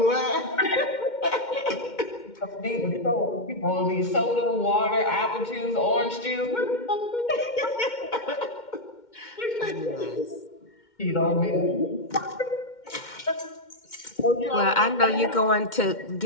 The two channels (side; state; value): right; late; 2.1 ms